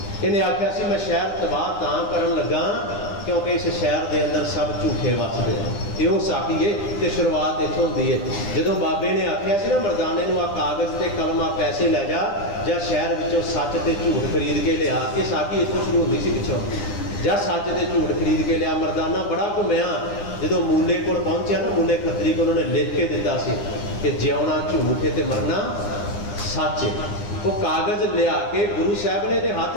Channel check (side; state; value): right; late; 9.9 ms